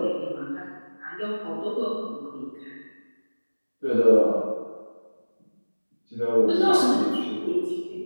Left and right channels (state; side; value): inverted; both; correlation -1.00